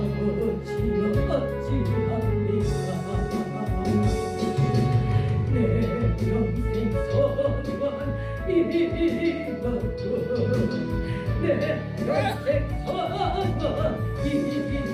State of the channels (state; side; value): identical; both; correlation 1.00